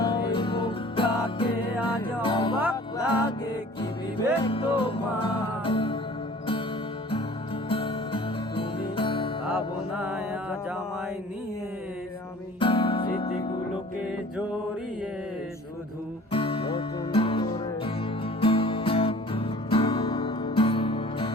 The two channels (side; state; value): both; normal; correlation 0.47